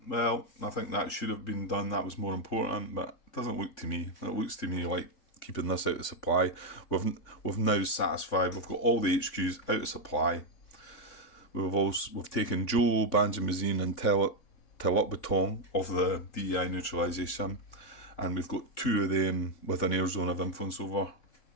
well, I think that should have been done, that was more important, but it doesn't look to me. It looks to me like keeping this out of supply. We've now satisfied. We've got all the HQs out of supply. We've taken Joe, Banjamazine and Telot of the DEI neutralisation, and we've got 2 of them with an air zone of influence over.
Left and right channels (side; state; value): right; late; 3.5 ms